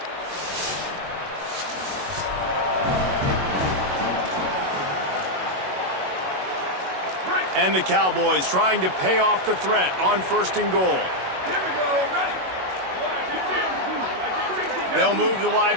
And the Cowboys trying to pay off the threat on 1st and goal. Here we go, ready. They'll move the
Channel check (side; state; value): left; late; 22 ms